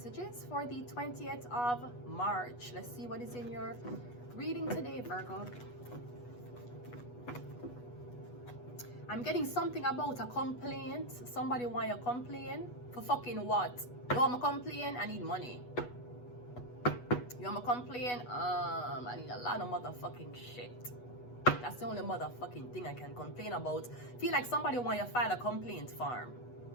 for the 20th of March. Let's see what is in your reading today, Virgo. I'm getting something about a complaint. Somebody want you to complain for fucking what? You want me to complain? I need money. You want me to complain? I need a lot of motherfucking shit. That's the only motherfucking thing I can complain about. Feel like somebody want you to file a complaint form.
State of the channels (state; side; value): late; right; 8.2 ms